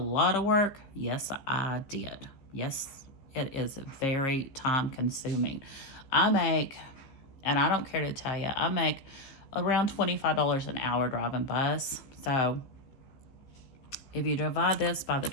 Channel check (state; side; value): late; right; 15 ms